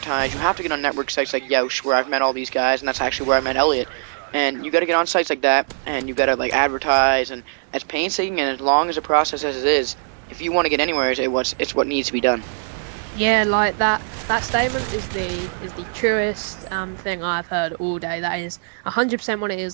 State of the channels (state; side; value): silent; left; digital silence